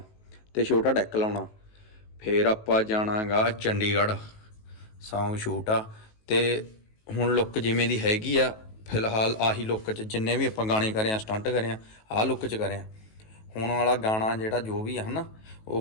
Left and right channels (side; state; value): right; late; 19 ms